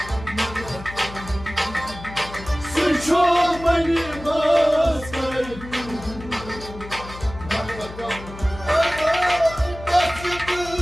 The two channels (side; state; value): left; noise; hum, 14 dB below the sound